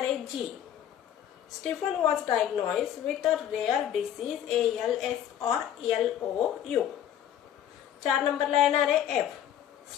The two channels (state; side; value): quieter; right; 10.4 dB